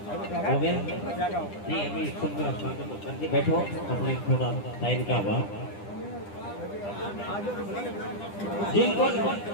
हो गया नहीं, अभी सब बैठो अपने थोड़ा टाइम का अभाव। जिनको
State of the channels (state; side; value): late; right; 10 ms